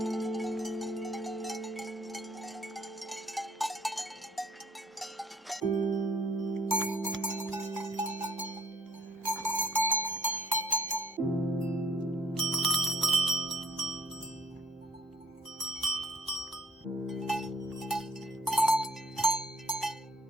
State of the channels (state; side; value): normal; both; correlation 0.59